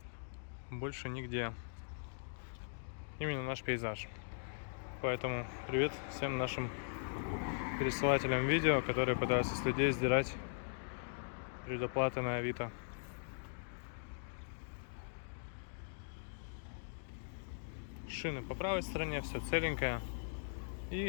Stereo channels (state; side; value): silent; right; digital silence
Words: больше нигде. Именно наш пейзаж. Поэтому привет всем нашим пересылателям видео, которые пытаются с людей сдирать предоплаты на Авито. Шины по правой стороне, все целенькое.